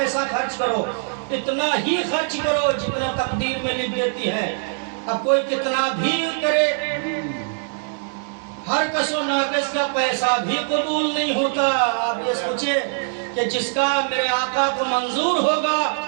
خرچ کرو، اتنا ہی خرچ کرو جتنا تقدیر میں لکھ دیتی ہے۔ اب کوئی کتنا بھی کرے، ہر کس و ناقص کا پیسہ بھی قبول نہیں ہوتا۔ آپ یہ سوچیں کہ جس کا میرے آقا کو منظور ہوگا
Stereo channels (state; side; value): silent; left; 64 dB below the other